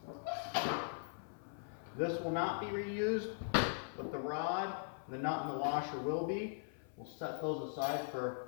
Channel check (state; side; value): silent; right; 51 dB below the other